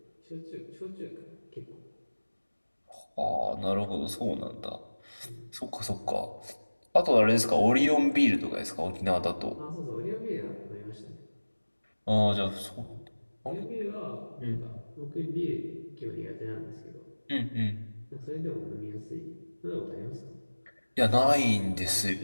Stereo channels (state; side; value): inverted; both; correlation -1.00